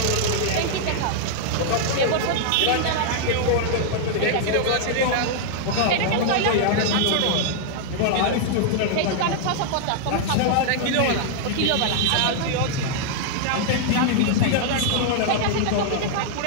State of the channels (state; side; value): different; both; correlation -0.01